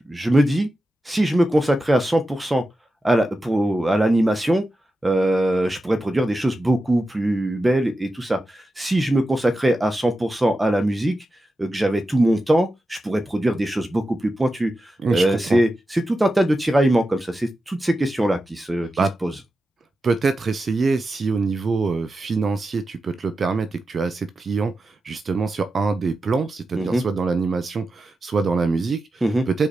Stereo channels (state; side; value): normal; both; correlation 0.91